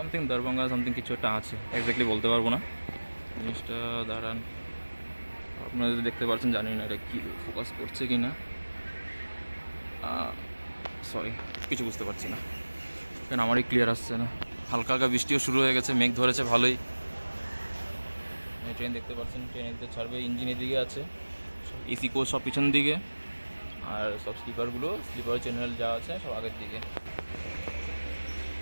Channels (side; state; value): both; inverted; correlation -1.00